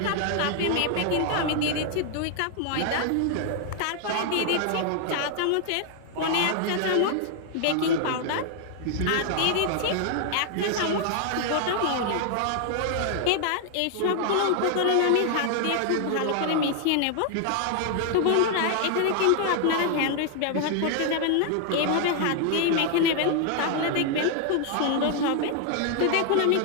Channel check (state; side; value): different; both; correlation 0.00